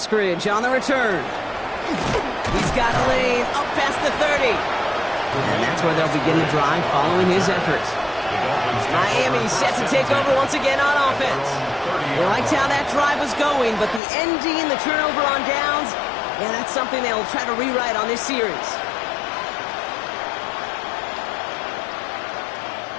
on the return. He's got a lane up past the 30. And that's where they'll begin the drive following his efforts. Miami set to take over once again on offense. They liked how that drive was going, but the ending, the turnover on downs, yeah, that's something they'll try to rewrite on this series.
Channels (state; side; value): drops out; right; at 14.0 s